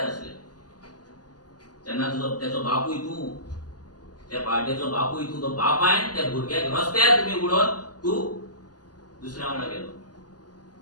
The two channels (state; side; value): late; right; 0.69 ms